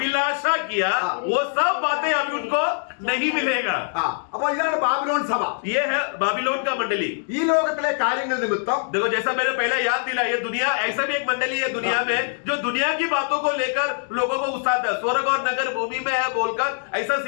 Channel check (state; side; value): silent; right; digital silence